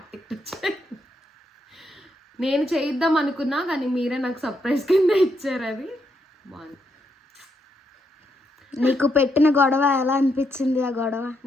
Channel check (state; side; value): normal; both; correlation 0.79